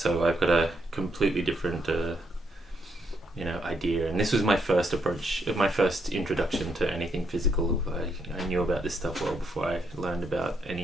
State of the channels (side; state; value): both; normal; correlation 0.76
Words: I've got a completely different idea, and this was my first approach, my first introduction to anything physical. I knew about this stuff well before I learned about